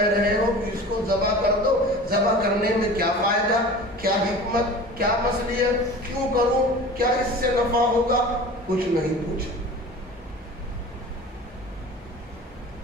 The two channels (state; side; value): normal; both; correlation 0.38